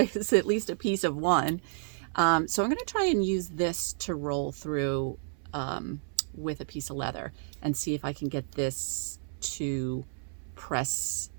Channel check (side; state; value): left; silent; 57 dB below the other